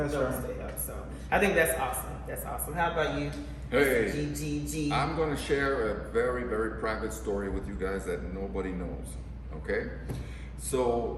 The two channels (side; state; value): both; identical; correlation 1.00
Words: to help. So I think that's awesome. How about you? Hey, GGG. I'm going to share a very, very private story with you guys that nobody knows, okay?